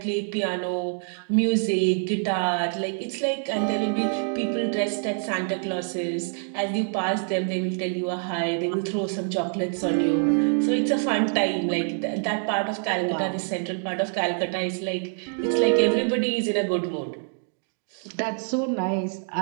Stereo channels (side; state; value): left; silent; 58 dB below the other